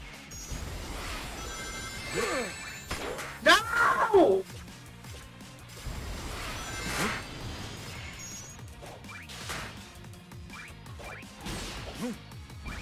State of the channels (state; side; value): identical; both; correlation 1.00